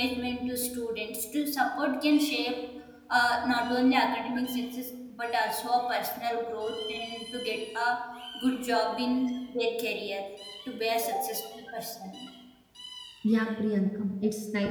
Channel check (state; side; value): identical; both; correlation 1.00